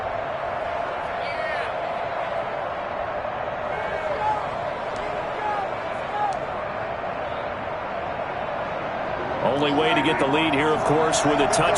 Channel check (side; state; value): both; identical; correlation 1.00